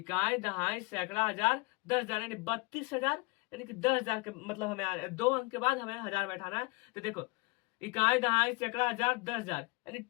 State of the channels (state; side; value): quieter; right; 25.8 dB